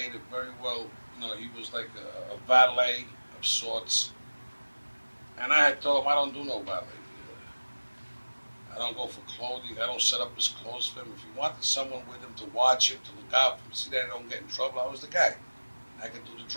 very well, he was like a valet of sorts. And I had told him, I don't do no valet. I don't go for clothing. I don't set up his clothes for him. If he wanted someone with him to watch him, to look out for him, see that I don't get in trouble, I was the guy. I could do the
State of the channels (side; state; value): both; inverted; correlation -1.00